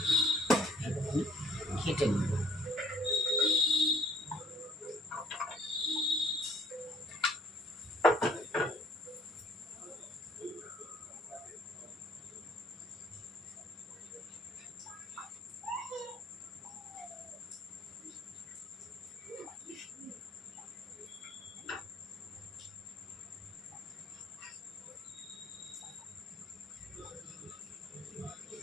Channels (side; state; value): both; normal; correlation 0.59